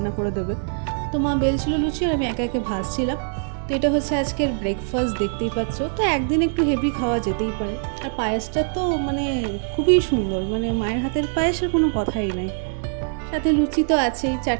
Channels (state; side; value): silent; left; digital silence